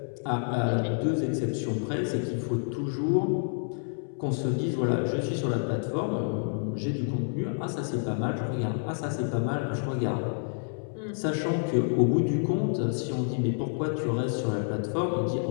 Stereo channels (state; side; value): silent; right; 59 dB below the other